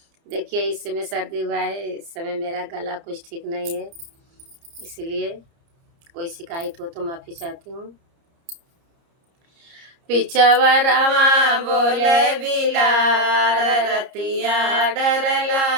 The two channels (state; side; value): late; left; 30 ms